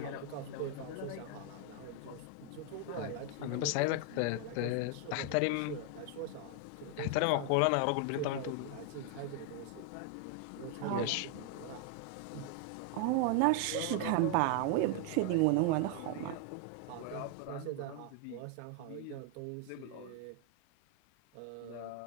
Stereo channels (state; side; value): different; both; correlation 0.00